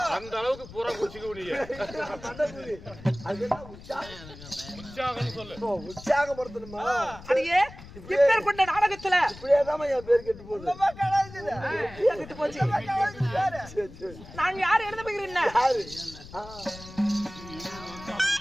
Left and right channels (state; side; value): noise; left; rumble, 17 dB below the sound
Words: அந்த அளவுக்கு பூரா குச்சிக்க முடியும் உற்சாகப்படுத்தணுமா அடியே இப்பேர் கொண்ட நாடகத்துல இப்படியேதான் என் பேர் கெட்டு போகுது கெட்டு போச்சு நான் யார் எழுத போகிறேன்